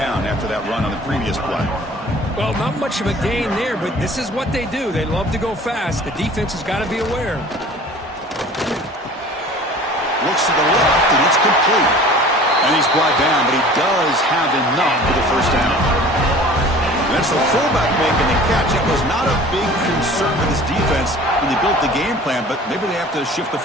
after that run on the previous play. Well, not much of a gain there, but this is what they do. They love to go fast. The defense has got to be aware. Looks to the left, and it's complete. And he's brought down, but he does have enough for the first down. That's the fullback making the catch. It was not a big concern for this defense when they built the game plan, but maybe they have to shift the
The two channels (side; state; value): both; normal; correlation 0.45